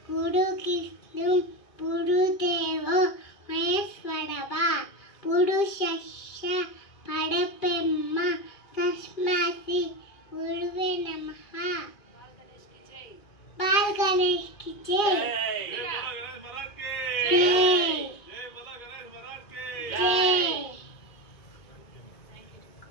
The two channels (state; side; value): late; right; 2.4 ms